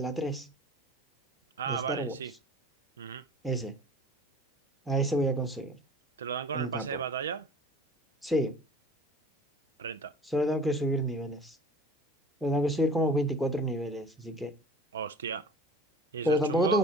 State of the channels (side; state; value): both; normal; correlation 0.43